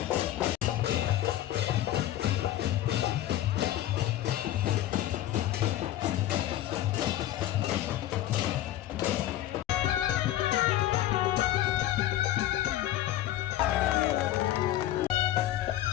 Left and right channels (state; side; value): quieter; right; 13.6 dB